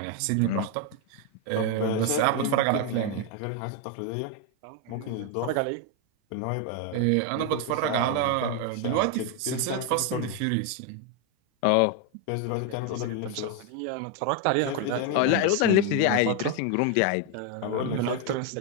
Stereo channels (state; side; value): different; both; correlation 0.01